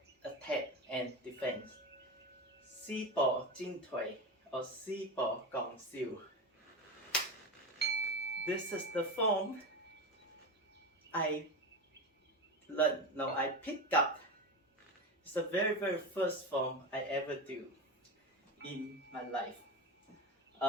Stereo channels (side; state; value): both; normal; correlation 0.20